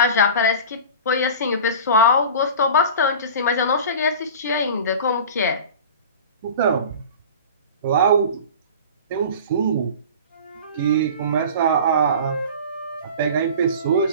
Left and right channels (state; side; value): inverted; both; correlation -0.36